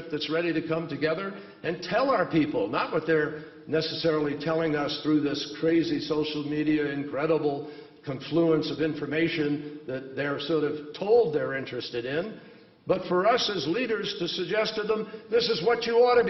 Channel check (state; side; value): identical; both; correlation 1.00